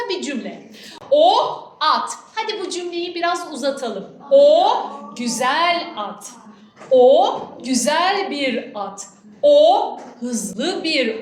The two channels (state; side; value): identical; both; correlation 1.00